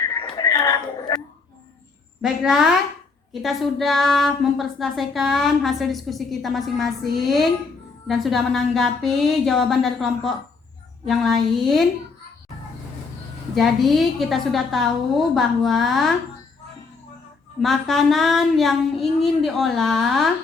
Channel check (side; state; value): right; quieter; 4.5 dB